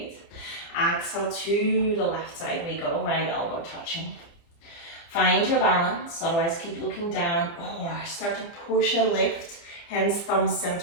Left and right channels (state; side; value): late; right; 29 ms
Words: Exhale to the left side we go, right elbow touching. Find your balance, otherwise keep looking down or start to push and lift. Hands, thumbs